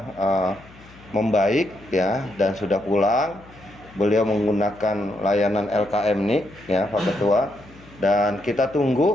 membaik ya dan sudah pulang. Beliau menggunakan layanan LKM NIK ya Pak Ketua, dan kita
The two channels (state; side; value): noise; left; hum, 23 dB below the sound